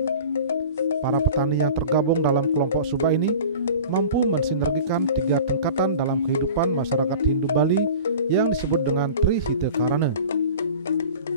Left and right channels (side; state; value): both; inverted; correlation -0.39